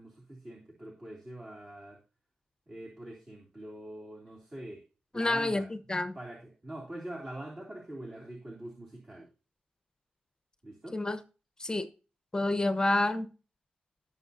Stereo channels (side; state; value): both; normal; correlation 0.94